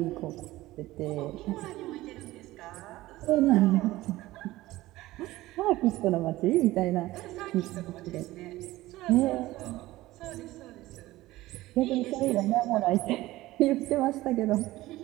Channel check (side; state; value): left; quieter; 17.4 dB